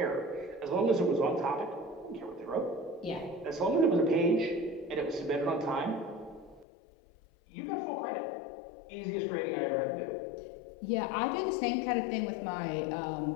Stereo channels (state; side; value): drops out; right; at 6.7 s